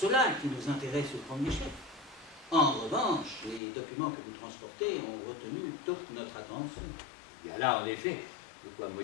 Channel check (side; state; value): right; drops out; at 3.6 s